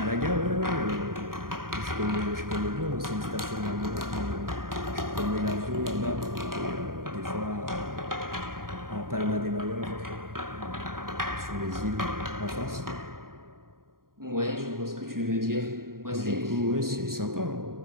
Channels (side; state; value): left; late; 0.91 ms